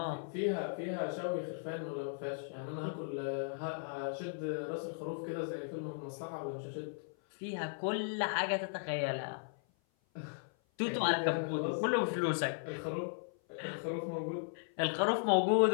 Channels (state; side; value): silent; right; 53 dB below the other